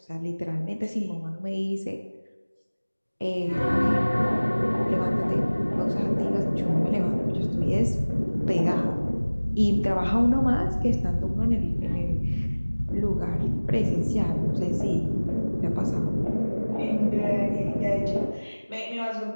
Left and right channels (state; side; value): inverted; both; correlation -1.00